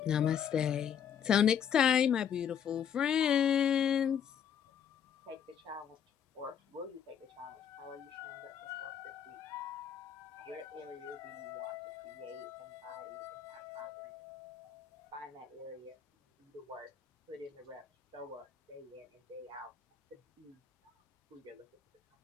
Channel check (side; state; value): right; quieter; 8.4 dB